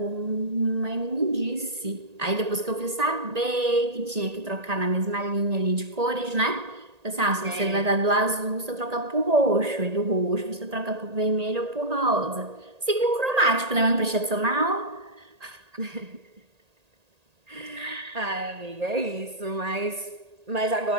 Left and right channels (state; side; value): late; left; 1.8 ms